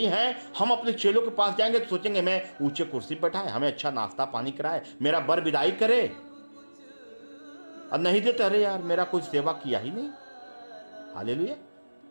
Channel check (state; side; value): inverted; both; correlation -1.00